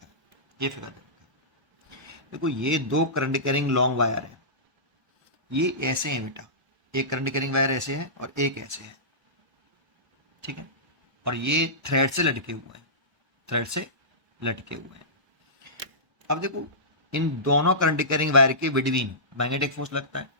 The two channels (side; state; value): left; late; 1.0 ms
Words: है, ये figure दे रखा है। देखो, ये दो current carrying long wire है। ये ऐसे हैं बेटा, एक करंट कैरिंग वायर ऐसे है और एक ऐसे है, ठीक है। और ये थ्रेड से लटके हुए हैं, थ्रेड से लटके हुए हैं। अब देखो, इन दोनों करंट कैरिंग वायर के बिटवीन मैग्नेटिक फोर्स लगता है।